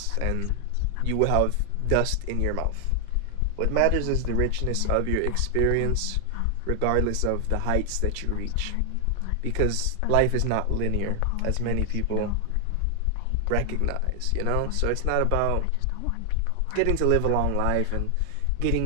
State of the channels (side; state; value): both; different; correlation 0.00